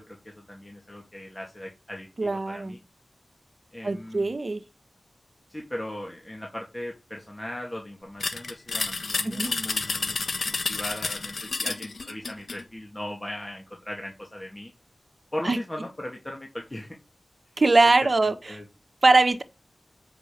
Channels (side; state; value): both; normal; correlation 0.95